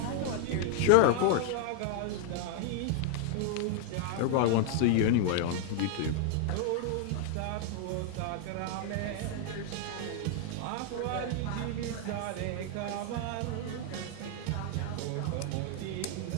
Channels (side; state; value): both; different; correlation 0.00